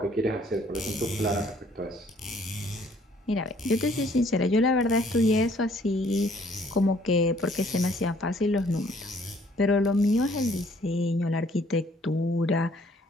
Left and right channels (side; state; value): both; normal; correlation 0.61